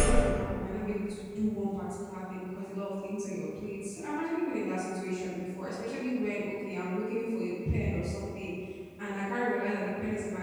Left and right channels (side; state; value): both; identical; correlation 1.00